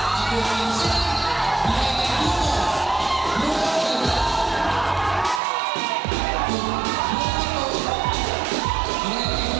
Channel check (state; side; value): drops out; left; at 5.4 s